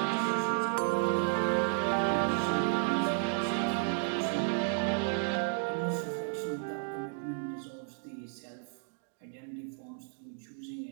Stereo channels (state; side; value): silent; left; 56 dB below the other